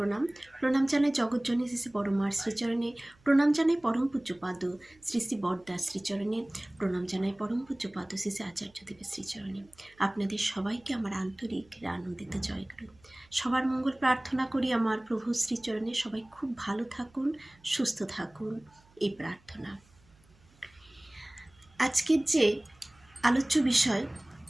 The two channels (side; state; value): right; noise; hum, 30 dB below the sound